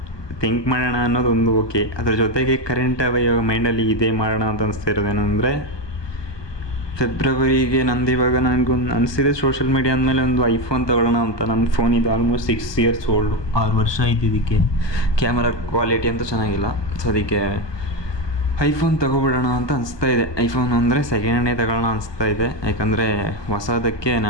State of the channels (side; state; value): right; late; 1.2 ms